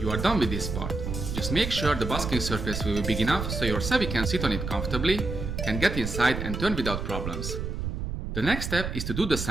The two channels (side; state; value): right; noise; rumble, 4 dB below the sound